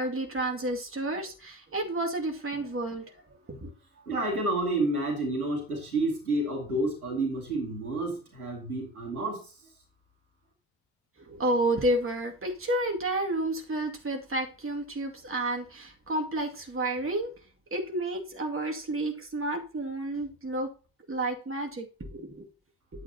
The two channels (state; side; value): normal; both; correlation 0.28